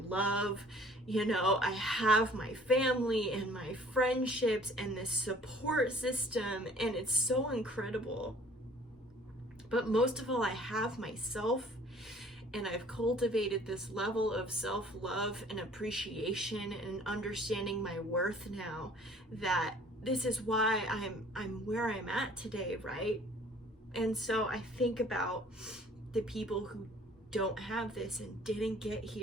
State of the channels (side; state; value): both; normal; correlation 0.54